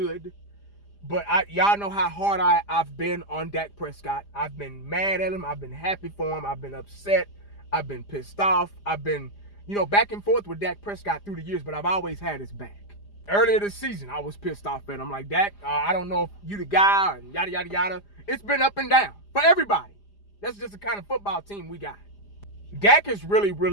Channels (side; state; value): right; late; 4.9 ms